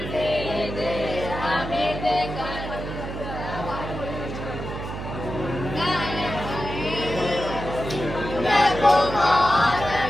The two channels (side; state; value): right; noise; hum, 7 dB below the sound